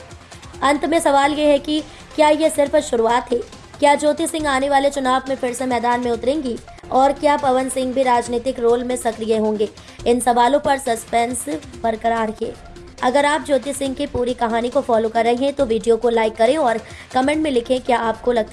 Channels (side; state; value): both; identical; correlation 1.00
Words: अंत में सवाल ये है कि क्या ये सिर्फ शुरुआत है? क्या ज्योति सिंह आने वाले चुनाव में फिर से मैदान में उतरेंगी और क्या पवन सिंह भी राजनीतिक रोल में सक्रिय होंगे? इन सवालों पर सस्पेंस बरकरार है। अगर आप ज्योति सिंह की पूरी कहानी को फॉलो कर रहे हैं तो वीडियो को लाइक करें और कमेंट में लिखें, क्या आपको